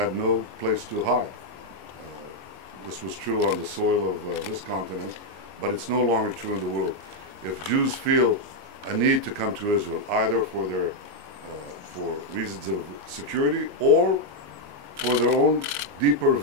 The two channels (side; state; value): left; late; 22 ms